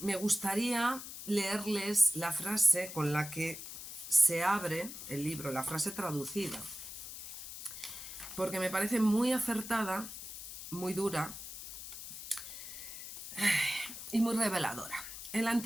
gustaría leerles la frase con la que se abre el libro, la frase traducida, porque me parece muy acertada, muy dura y muy reveladora. El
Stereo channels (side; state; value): left; noise; hiss, 10 dB below the sound